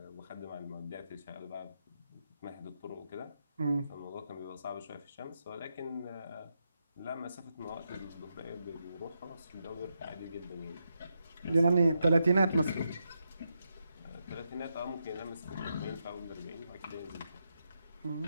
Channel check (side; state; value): both; inverted; correlation -0.85